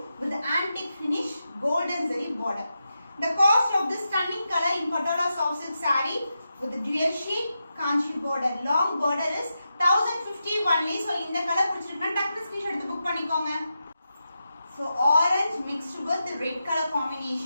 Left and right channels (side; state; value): both; inverted; correlation -0.88